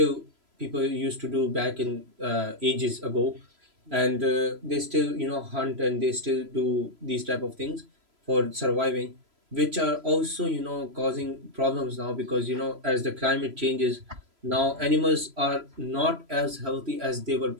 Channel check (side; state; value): left; late; 3.0 ms